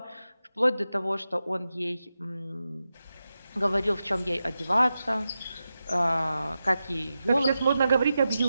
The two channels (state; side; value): inverted; both; correlation -0.91